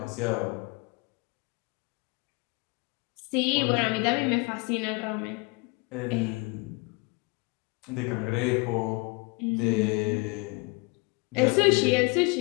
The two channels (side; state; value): right; quieter; 28.5 dB